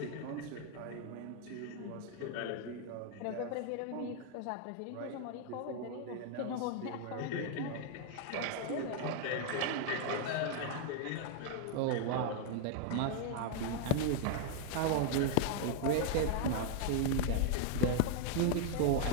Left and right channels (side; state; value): both; different; correlation 0.00